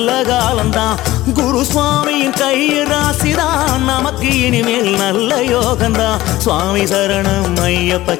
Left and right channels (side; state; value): right; quieter; 16.7 dB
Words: காலம்தான் குரு சுவாமியின் கையில் ராசிதான் நமக்கு இனிமேல் நல்ல யோகம்தான் சுவாமி சரணம் ஐயப்ப